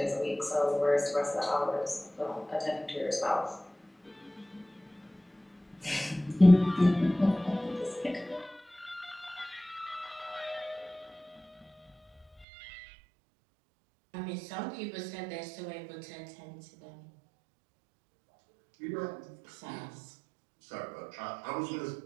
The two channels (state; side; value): drops out; left; at 12.5 s